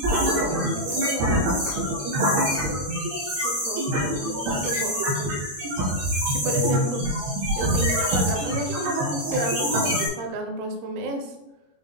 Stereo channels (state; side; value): late; left; 21 ms